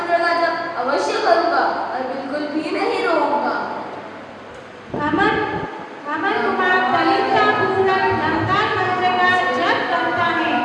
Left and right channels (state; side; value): identical; both; correlation 1.00